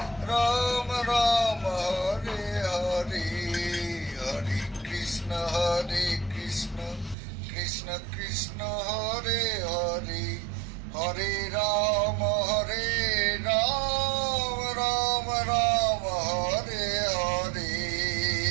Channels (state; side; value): drops out; left; at 7.2 s